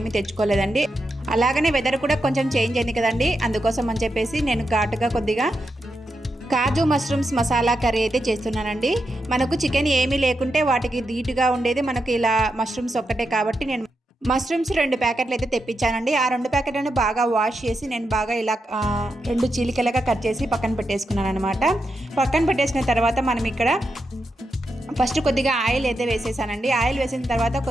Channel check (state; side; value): normal; both; correlation 0.86